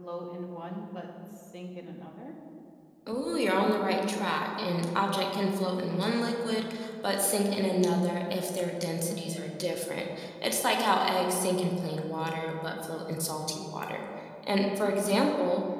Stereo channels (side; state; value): both; identical; correlation 1.00